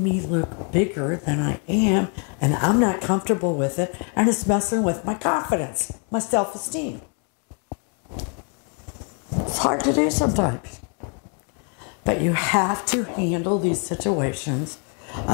me look bigger than I am, and I'm not comfortable with it, and it's messing with my confidence, my self-esteem. It's hard to do sometimes. But you have to handle these situations,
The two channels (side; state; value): right; quieter; 37.4 dB